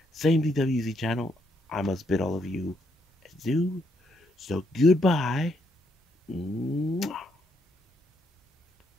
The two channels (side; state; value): both; normal; correlation 0.75